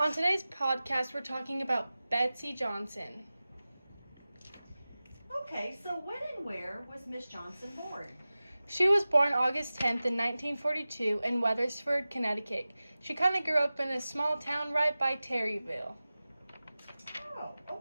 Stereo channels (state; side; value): inverted; both; correlation -0.96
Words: today's podcast, we're talking about Betsy Johnson. Okay, so when and where was Miss Johnson born? She was born August 10th in 1942 in Wethersford, Connecticut. She kind of grew up in a small town right by Terryville. Oh,